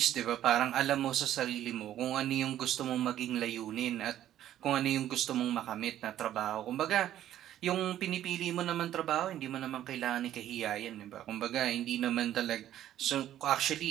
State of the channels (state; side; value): quieter; left; 12.1 dB